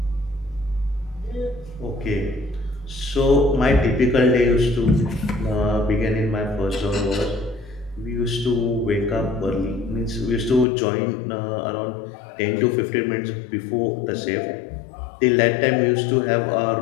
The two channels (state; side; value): drops out; right; at 10.7 s